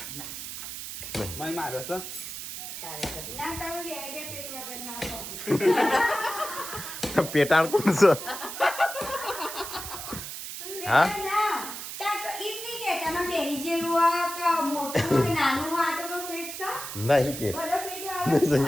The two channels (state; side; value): noise; right; hiss, 8 dB below the sound